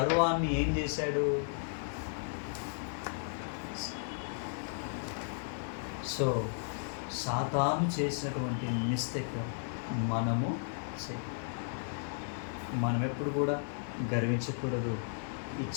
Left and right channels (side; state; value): right; silent; digital silence